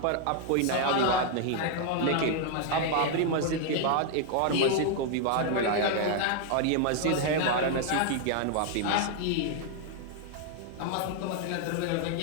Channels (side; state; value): both; different; correlation 0.00